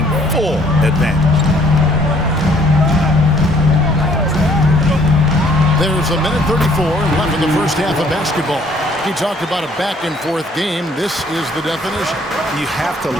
full advantage. There's a minute 34 left in the first half of basketball. He talked about a back-and-forth game. This is the definition. You have to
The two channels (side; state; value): both; normal; correlation 0.61